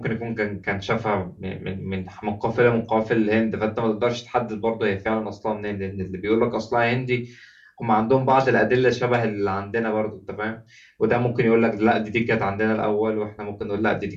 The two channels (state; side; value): identical; both; correlation 1.00